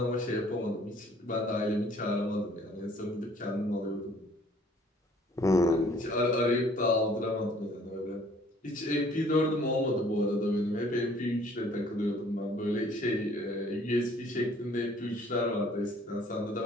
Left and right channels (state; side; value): normal; both; correlation 0.57